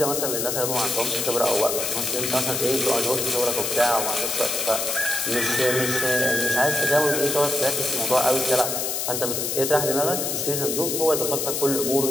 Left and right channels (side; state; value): left; noise; hiss, 1 dB below the sound